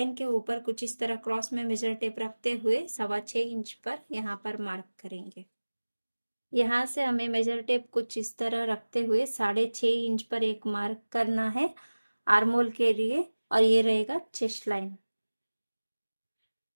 के ऊपर कुछ इस तरह क्रॉस में मेजर टेप रखते हुए 6.25 इंच पर यहाँ पर मार्क करेंगे। यहाँ से हमें मेजर टेप कुछ इस तरह रखते हुए 6.5 इंच पर एक मार्क करना है आर्मोल के लिए, और ये रहेगा चेस्ट लाइन।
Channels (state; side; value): inverted; both; correlation -1.00